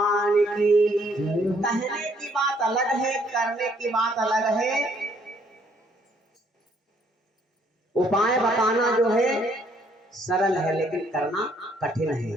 की। कहने की बात अलग है, करने की बात अलग है। उपाय बताना जो है सरल है, लेकिन करना कठिन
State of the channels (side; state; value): both; normal; correlation 0.66